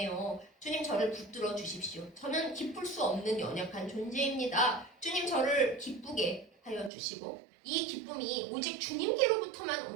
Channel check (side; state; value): left; drops out; at 6.9 s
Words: 주님 저를 붙들어 주십시오. 저는 기쁠 수 없는 연약한 존재입니다. 주님 저를 기쁘게 하여 주시고 이 기쁨이 오직 주님께로부터만